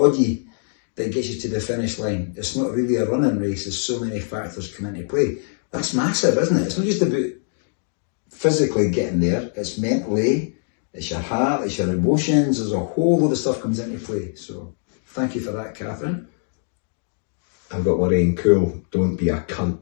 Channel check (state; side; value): silent; right; digital silence